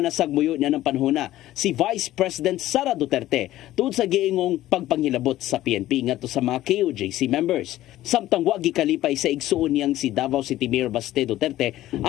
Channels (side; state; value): right; quieter; 14.7 dB